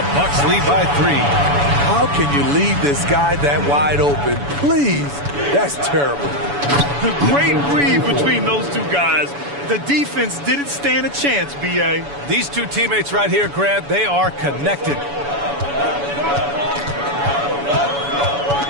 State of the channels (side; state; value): left; late; 7.0 ms